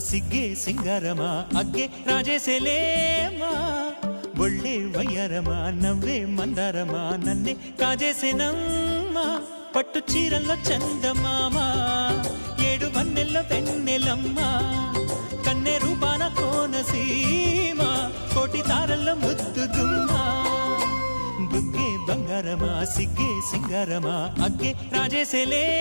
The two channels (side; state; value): both; inverted; correlation -1.00